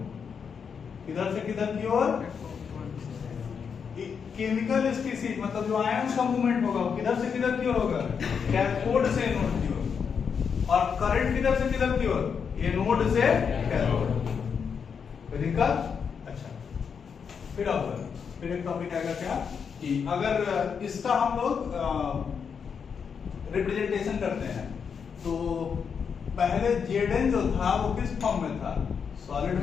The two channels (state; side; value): quieter; right; 6.5 dB